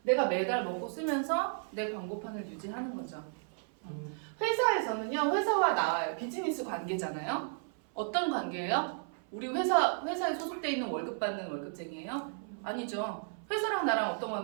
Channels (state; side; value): silent; left; 55 dB below the other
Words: 내가 매달 먹고 쓰면서 내 광고판을 유지하는 거죠. 회사에서는요, 회사와 나와요. 비즈니스 관계잖아요. 어떤 관계예요? 우리 회사에 소속돼 있는 월급 받는 월급쟁이에요? 아니죠. 회사랑 나랑 어떤